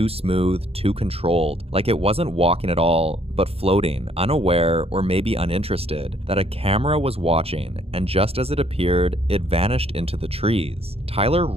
smooth, too controlled, like it wasn't walking at all, but floating, unaware or maybe uninterested, that a camera was watching, and just as it appeared, it vanished into the trees. Tyler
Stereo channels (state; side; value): late; left; 0.29 ms